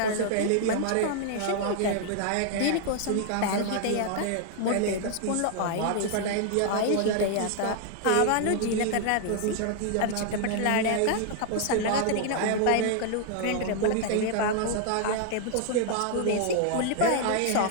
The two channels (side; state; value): both; different; correlation 0.00